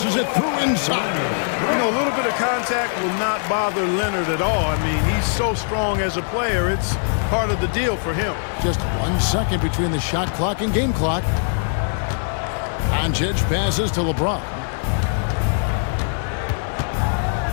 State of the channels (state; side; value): silent; right; digital silence